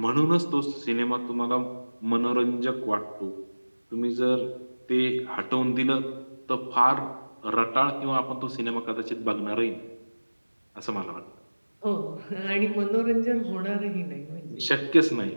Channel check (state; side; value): inverted; both; correlation -1.00